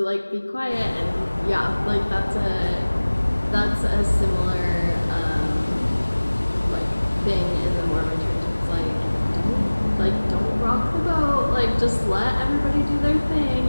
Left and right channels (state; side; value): inverted; both; correlation -1.00